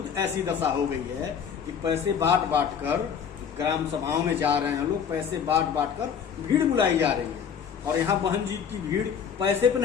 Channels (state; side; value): quieter; right; 7.5 dB